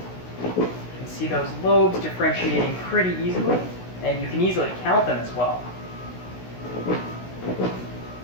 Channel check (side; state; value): right; late; 16 ms